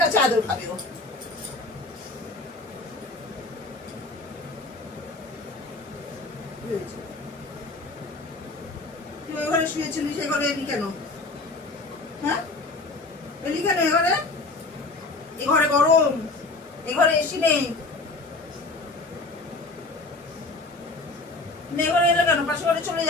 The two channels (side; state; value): right; quieter; 3.3 dB